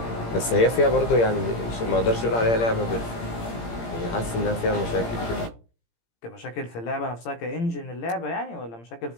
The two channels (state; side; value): late; right; 17 ms